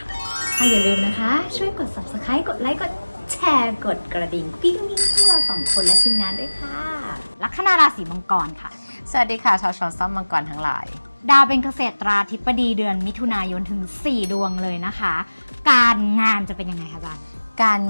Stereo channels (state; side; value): inverted; both; correlation -1.00